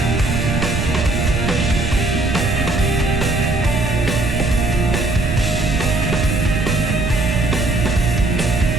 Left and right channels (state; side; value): noise; right; rumble, 1 dB below the sound